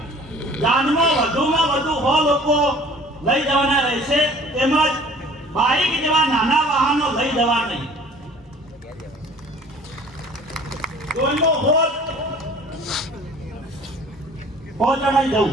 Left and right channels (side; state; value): both; normal; correlation 0.49